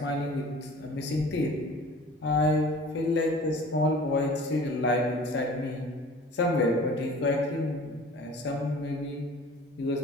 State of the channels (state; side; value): normal; both; correlation 0.44